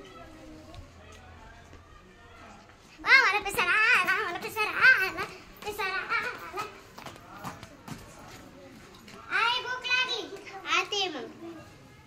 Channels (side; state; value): both; identical; correlation 1.00